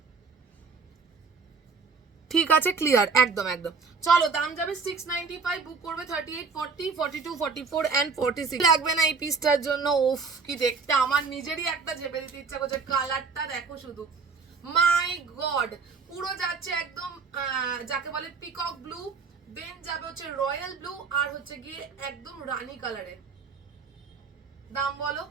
ঠিক আছে, ক্লিয়ার, একদম একদম। চলো দাম যাবে 695। বুক করবে 38, 40, 42, 44 অ্যান্ড 46। লাগবে না এই পিসটার জন্য। ওফ কি দেখতে, আমার নিজেরই একটা ঝেপে দিতে ইচ্ছা করছে। কালারটা দেখো শুধু, মাই গড। পুরো যাচ্ছে একদম যাকে বলে পিকক ব্লু, দেন যাবে হচ্ছে রয়্যাল ব্লু, আর হচ্ছে গিয়ে একদম রানী কালারের। দাম বলো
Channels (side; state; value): left; quieter; 4.9 dB